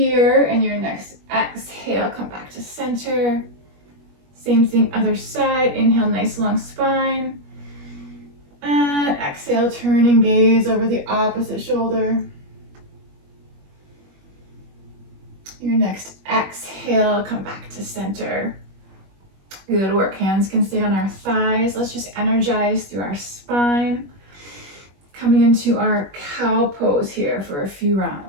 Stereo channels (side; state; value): left; late; 21 ms